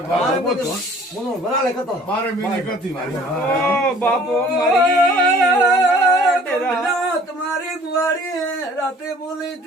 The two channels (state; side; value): normal; both; correlation 0.52